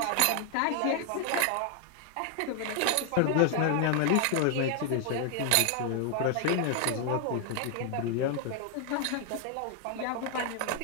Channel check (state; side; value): different; both; correlation 0.00